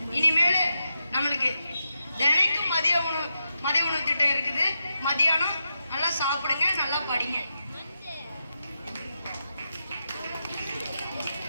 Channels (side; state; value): both; inverted; correlation -0.86